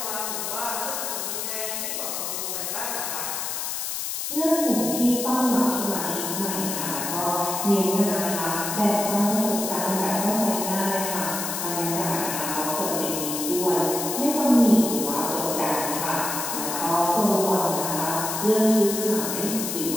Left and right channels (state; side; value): noise; left; hiss, 3 dB below the sound